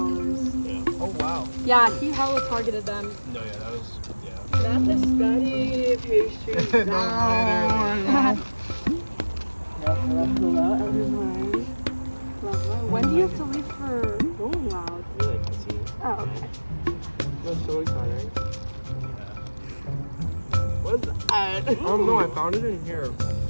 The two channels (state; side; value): inverted; both; correlation -1.00